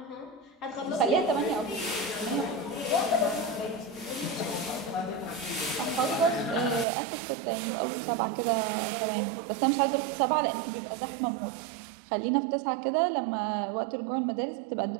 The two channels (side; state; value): left; drops out; at 6.9 s